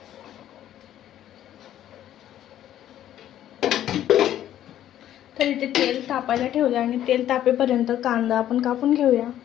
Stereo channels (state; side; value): quieter; right; 11.8 dB